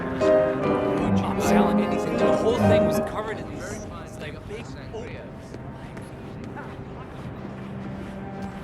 I'm selling anything. The whole thing was covered in these like big Oreos.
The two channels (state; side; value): identical; both; correlation 1.00